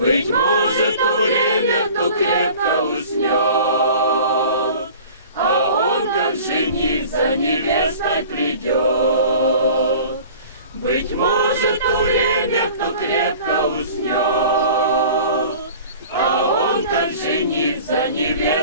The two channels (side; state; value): both; inverted; correlation -0.44